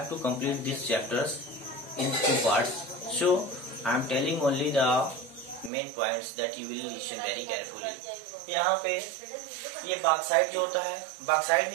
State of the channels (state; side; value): drops out; left; at 5.7 s